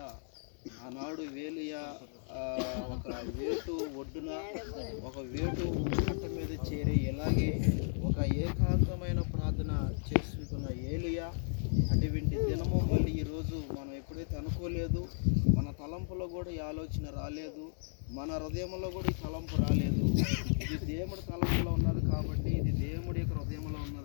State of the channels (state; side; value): silent; right; 55 dB below the other